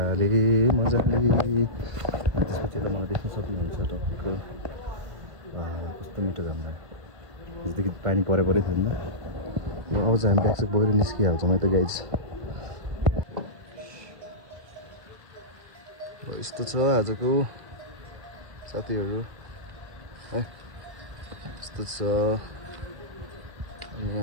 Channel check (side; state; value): left; late; 1.5 ms